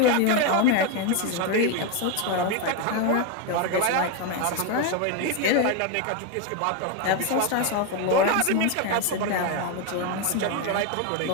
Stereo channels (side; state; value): both; different; correlation 0.02